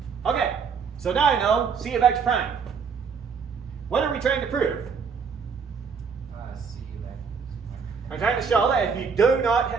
Okay, so now I know C of x prime. What are we trying to prove? C of x. I'm trying to show that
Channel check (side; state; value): left; quieter; 5.9 dB